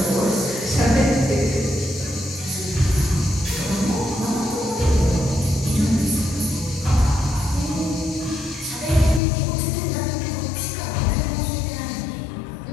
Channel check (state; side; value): drops out; right; at 9.2 s